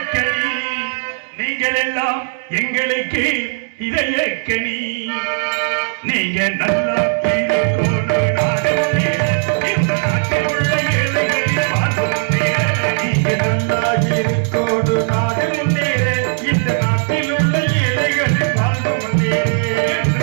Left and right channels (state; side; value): silent; left; digital silence